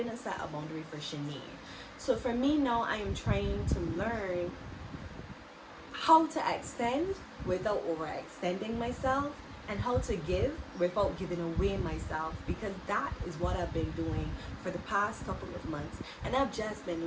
set a boundary for Shanae. So for me now, I am trying to learn how to extend without overextending myself and how to give without giving away myself, because that is what I've been doing for the past couple of months. And I've just been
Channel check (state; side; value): identical; both; correlation 1.00